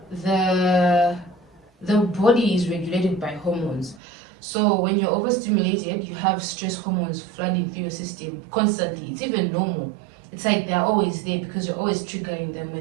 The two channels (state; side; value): drops out; left; at 4.0 s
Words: the the body is regulated by hormones. So when you're overstimulated, you have stress hormones flooding through your system constantly. It's even normal. It's like they're always there because you're always triggering them